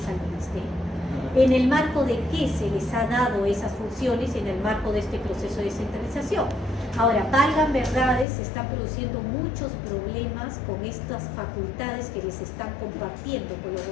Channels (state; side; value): drops out; right; at 8.2 s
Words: al ministerio. ¿En el marco de qué se les ha dado esas funciones en el marco de este proceso de descentralización? Ahora, valgan verdades, se están produciendo muchos problemas con estas facultades que les están compartiendo con los